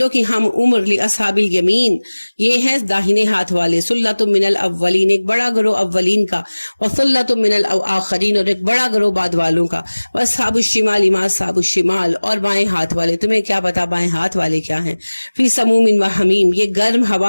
کی ہم عمر لاصحاب الیمین، یہ ہے داہنے ہاتھ والے، سلۃ من الاولین ایک بڑا گروہ اولین کا، وسلۃ من الاخرین اور ایک بڑا گروہ بعد والوں کا، واصحاب الشمال ما اصحاب الشمال اور بائیں ہاتھ والے، تمہیں کیا پتا بائیں ہاتھ والے کیا ہیں، فی سموم و حمیم یہ گرم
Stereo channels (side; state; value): both; inverted; correlation -1.00